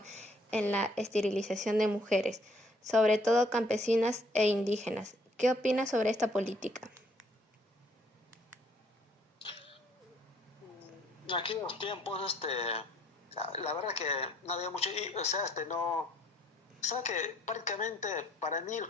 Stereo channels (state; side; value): normal; both; correlation 0.64